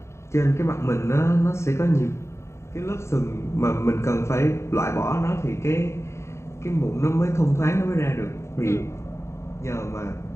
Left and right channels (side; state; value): right; late; 0.13 ms